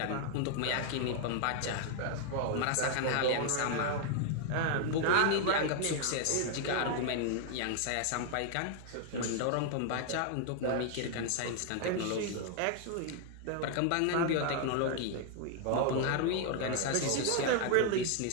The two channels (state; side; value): different; both; correlation 0.00